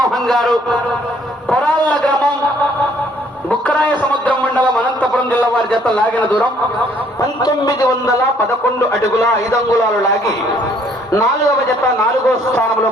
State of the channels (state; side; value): normal; both; correlation 0.63